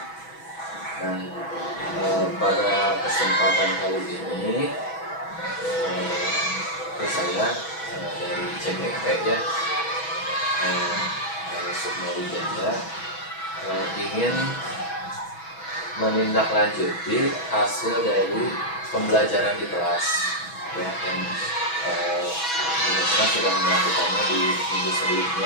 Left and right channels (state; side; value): late; right; 6.1 ms